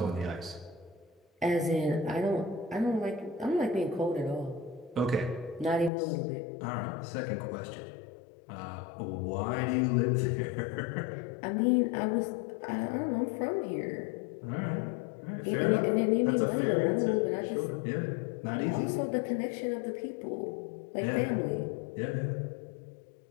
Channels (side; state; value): right; drops out; at 5.9 s